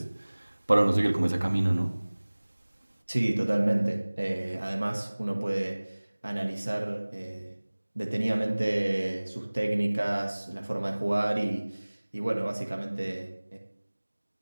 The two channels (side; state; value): both; inverted; correlation -1.00